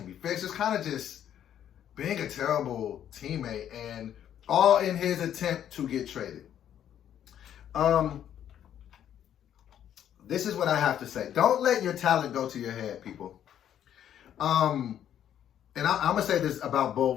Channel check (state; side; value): quieter; right; 10.2 dB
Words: be fixed. It's kind of just being a terrible teammate and all in his attempt to get traded. This is what I have to say. Don't let your talent go to your head, people. And I'm going to say this about